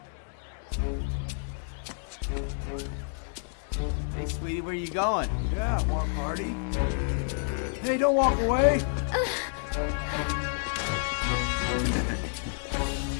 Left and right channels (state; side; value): silent; right; 58 dB below the other